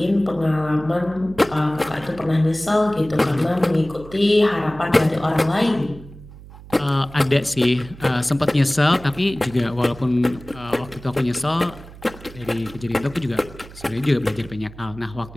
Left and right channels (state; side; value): noise; right; hum, 18 dB below the sound